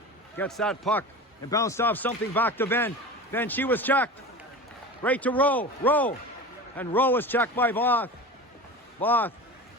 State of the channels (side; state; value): both; normal; correlation 0.32